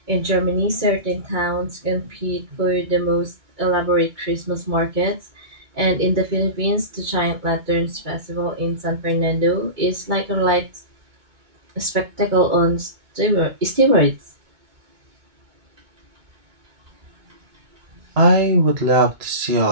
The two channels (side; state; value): left; late; 2.2 ms